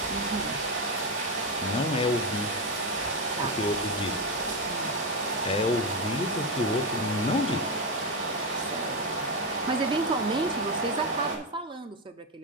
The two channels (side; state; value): both; normal; correlation 0.10